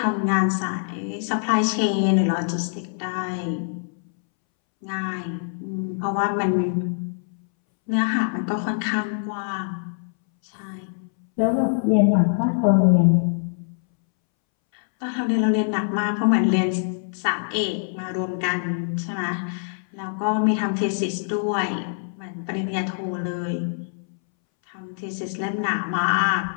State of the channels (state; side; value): silent; right; 63 dB below the other